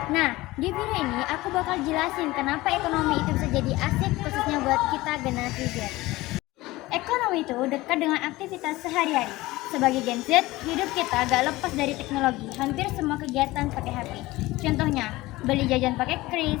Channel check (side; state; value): right; quieter; 19.2 dB